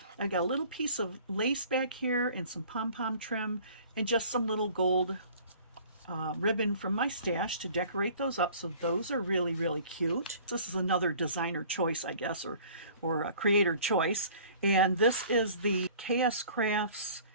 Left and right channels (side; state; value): both; inverted; correlation -0.49